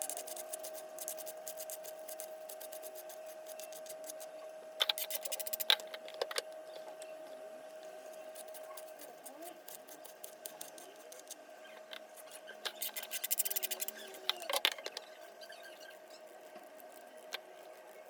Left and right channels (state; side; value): identical; both; correlation 1.00